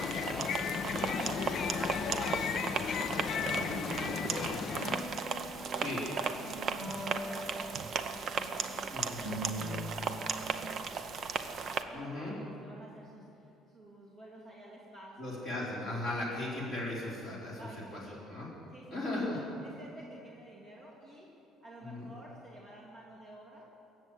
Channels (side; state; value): both; normal; correlation 0.62